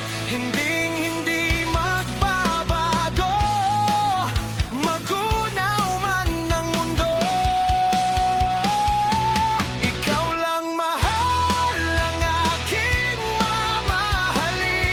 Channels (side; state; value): both; identical; correlation 1.00